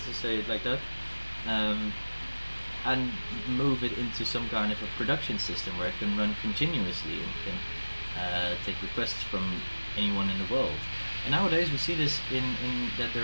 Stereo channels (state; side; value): inverted; both; correlation -1.00